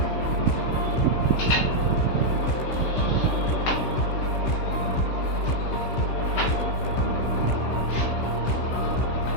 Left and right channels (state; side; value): late; right; 16 ms